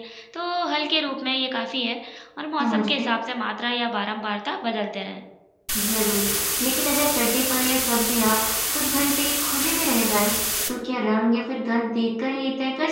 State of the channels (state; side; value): identical; both; correlation 1.00